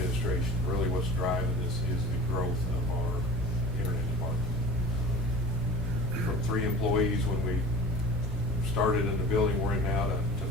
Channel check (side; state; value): both; normal; correlation 0.40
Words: Really what's driving this is the growth of our internet department. From 3 employees when we started in the building we're in now to